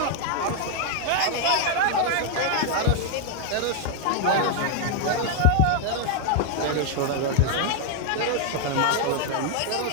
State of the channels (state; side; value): different; both; correlation 0.00